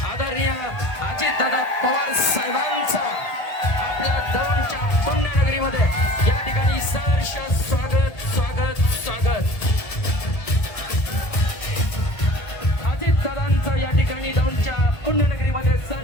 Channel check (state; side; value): late; right; 1.3 ms